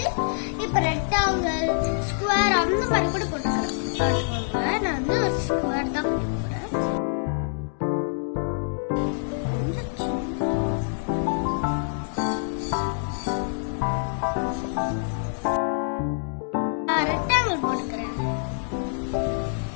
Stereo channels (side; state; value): right; silent; digital silence